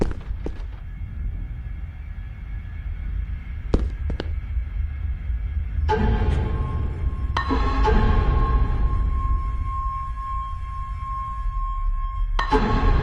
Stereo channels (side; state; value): both; identical; correlation 1.00